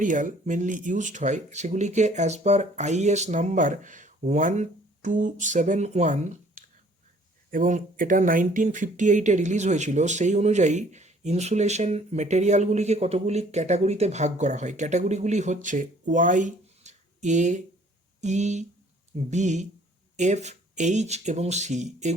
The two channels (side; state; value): both; normal; correlation 0.57